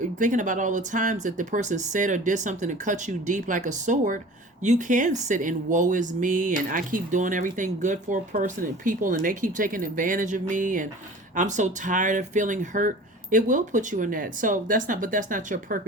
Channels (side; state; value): both; normal; correlation 0.42